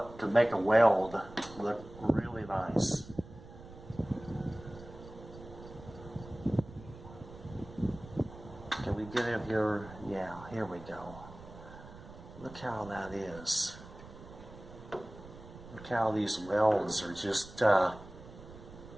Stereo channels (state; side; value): noise; right; rumble, 16 dB below the sound